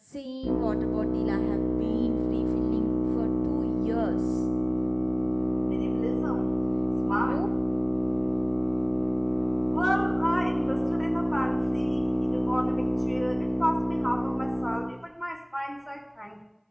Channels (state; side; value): identical; both; correlation 1.00